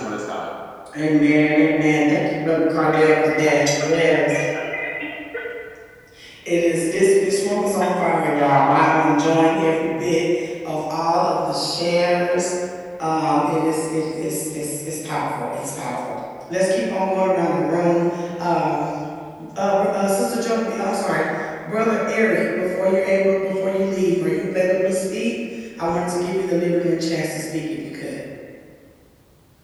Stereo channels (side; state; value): both; identical; correlation 1.00